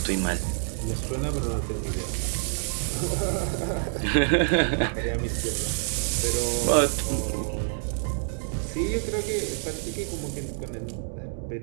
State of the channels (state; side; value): silent; left; 60 dB below the other